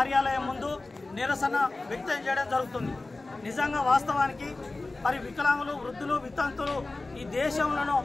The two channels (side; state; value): right; quieter; 3.2 dB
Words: ముందు నిరసన వ్యక్తం చేయడం జరుగుతుంది। నిజంగా వాస్తవానికి మరి వికలాంగులు వృద్ధులు వితంతులు ఈ దేశంలో